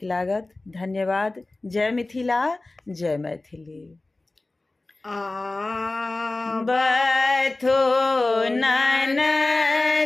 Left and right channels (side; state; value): right; quieter; 3.0 dB